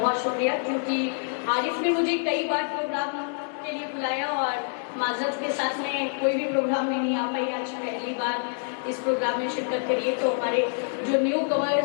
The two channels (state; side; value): silent; right; 61 dB below the other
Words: शुक्रिया, क्योंकि आरिफ ने मुझे कई बार प्रोग्राम के लिए बुलाया और माजरत के साथ में कोई भी प्रोग्राम में नहीं आ पाई। आज पहली बार इस प्रोग्राम में शिरकत करिए। तो हमारे जो न्यू